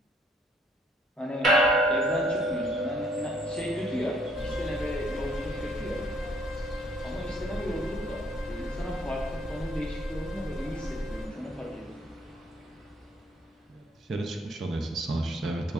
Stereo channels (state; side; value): normal; both; correlation 0.65